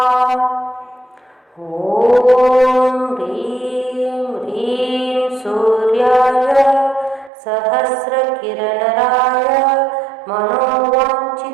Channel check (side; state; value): left; drops out; at 7.3 s